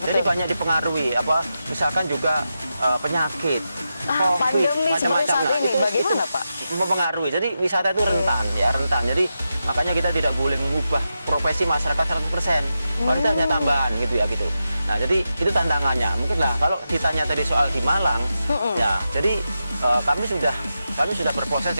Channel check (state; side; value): inverted; both; correlation -0.89